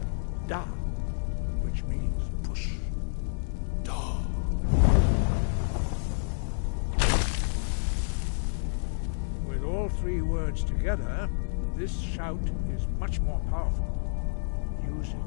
Da, which means push. Da. With all three words together, this shout is much more powerful. Use it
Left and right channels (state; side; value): silent; right; digital silence